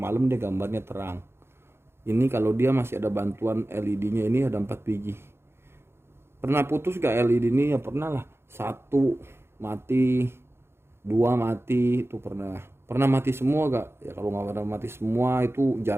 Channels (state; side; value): late; left; 0.12 ms